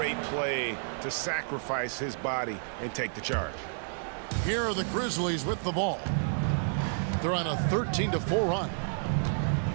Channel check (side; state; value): left; silent; digital silence